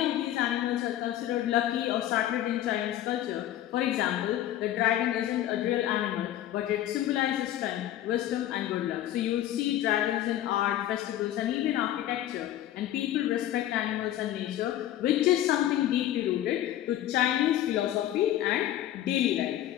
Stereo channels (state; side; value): quieter; right; 12.8 dB